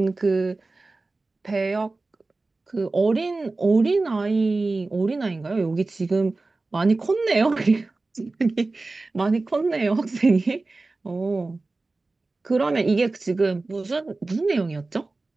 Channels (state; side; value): quieter; left; 3.4 dB